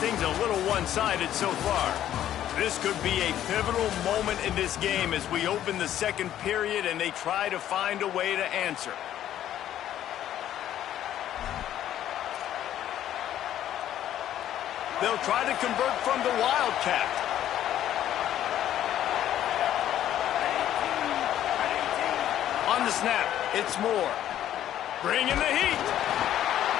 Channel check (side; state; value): right; quieter; 11.7 dB